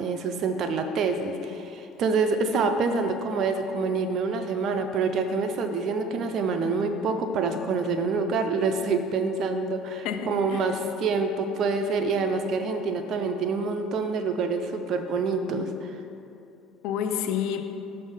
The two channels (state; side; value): quieter; left; 3.2 dB